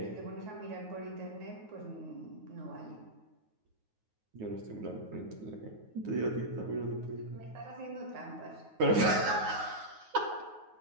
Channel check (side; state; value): left; late; 9.4 ms